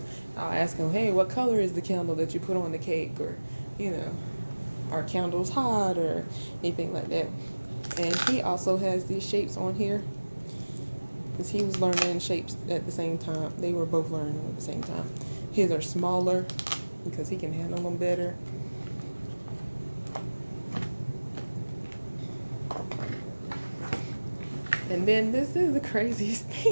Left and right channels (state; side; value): inverted; both; correlation -1.00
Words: I'll ask him, hey, what color is the candle that you put on the cake? Or, you know, are candles hot or anything like that. And he also has these shapes on here, because he was learning shapes at the same time. They were both learning at the same time. His are smaller because he can handle them better. And then this is the craziest